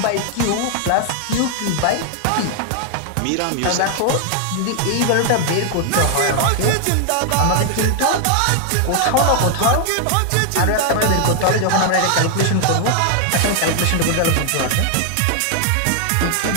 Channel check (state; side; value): different; both; correlation 0.00